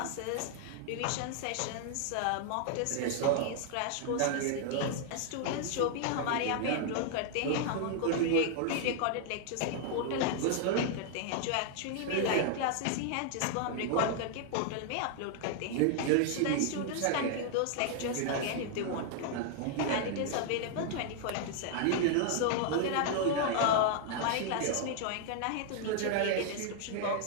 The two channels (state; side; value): different; both; correlation 0.00